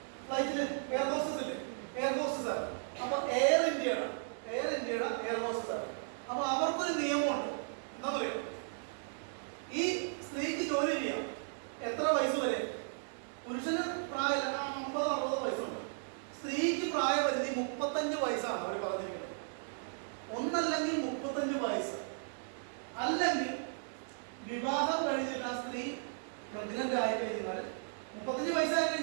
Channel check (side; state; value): left; silent; digital silence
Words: ഫ്ലൈറ്റില് എയർ ഹോസ്റ്റസ് ഇല്ലേ? എയർ ഹോസ്റ്റസ് ആണ്. അപ്പൊ എയർ ഇന്ത്യയുടെ എയർ ഹോസ്റ്റസ് ആണ്. അപ്പൊ അവർക്കൊരു നിയമമുണ്ട്. എന്താ പറയുക? ഈ സ്ത്രീക്ക് ജോലി ചെയ്യാം എത്ര വയസ്സ് വരെ? പുരുഷന് പ്രായം 50-60 വയസ്സുണ്ട്. സ്ത്രീക്ക് പ്രായപരിധി 35 വയസ്സാണ് അവർ പറഞ്ഞിരിക്കുന്നത്. ഒന്നല്ലെങ്കിൽ 35 വയസ്സ്, അല്ലെങ്കിൽ വിവാഹം കഴിഞ്ഞിട്ട് ആ സ്ത്രീ പ്രഗ്നന്റ് ആയി കഴിഞ്ഞാൽ 35 വയസ്സായി